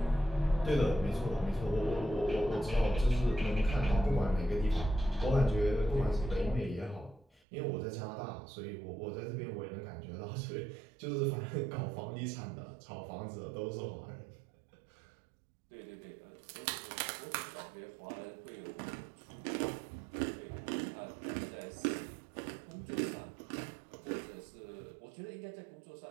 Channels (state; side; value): drops out; left; at 7.2 s